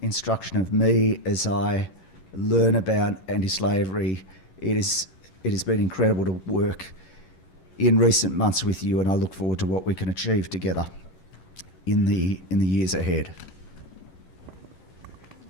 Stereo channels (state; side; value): late; right; 11 ms